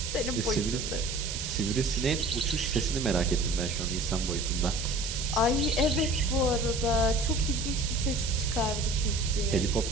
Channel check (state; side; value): noise; right; hiss, 5 dB below the sound